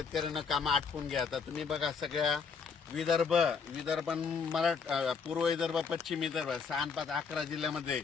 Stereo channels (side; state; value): right; quieter; 5.6 dB